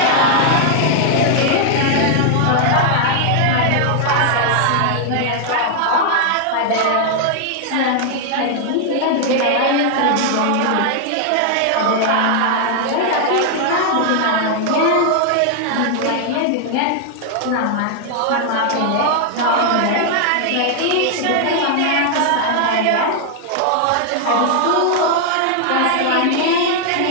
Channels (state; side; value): different; both; correlation 0.00